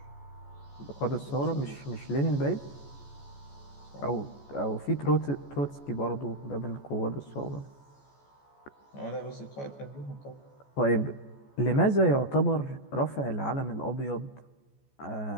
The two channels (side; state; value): right; late; 14 ms